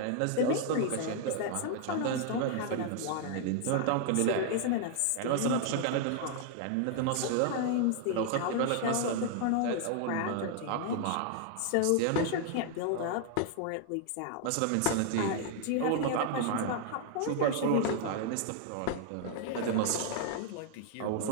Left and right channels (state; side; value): different; both; correlation 0.00